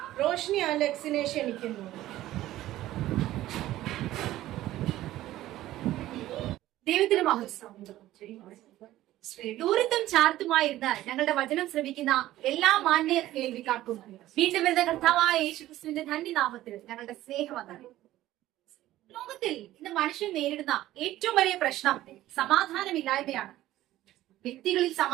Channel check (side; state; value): left; quieter; 14.9 dB